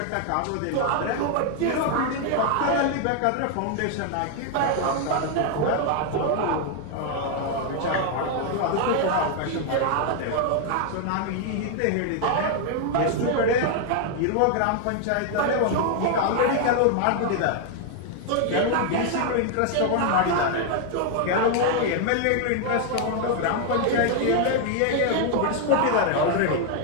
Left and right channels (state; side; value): different; both; correlation 0.00